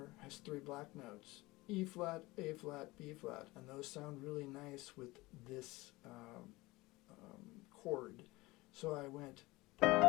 has 3 black notes: E flat, A flat, B flat, and those sound really nice with this chord. So I went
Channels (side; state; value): right; quieter; 21.0 dB